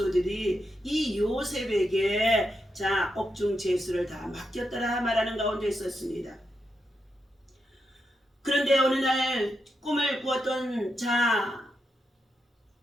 이 요셉에게 옥중 죄수를 다 맡겼더라 말하는 가운데 있었습니다. 그런데 어느 날 꿈을 꾸었던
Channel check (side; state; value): both; normal; correlation 0.84